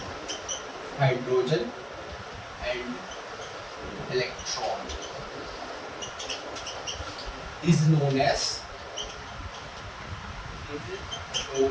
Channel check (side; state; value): both; identical; correlation 1.00